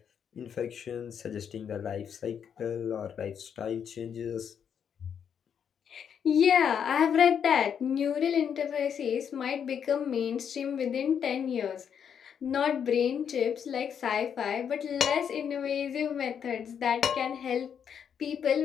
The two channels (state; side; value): quieter; right; 7.9 dB